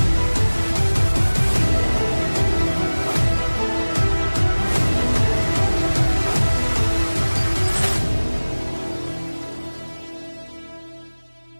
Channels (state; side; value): inverted; both; correlation -1.00